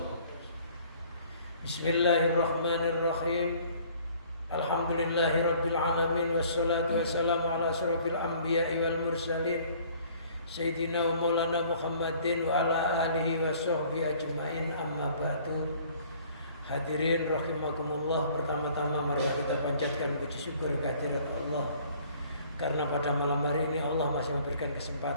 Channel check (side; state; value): both; inverted; correlation -0.55